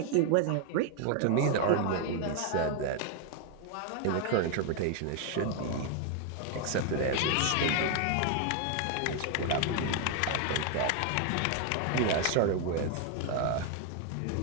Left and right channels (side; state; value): both; different; correlation 0.01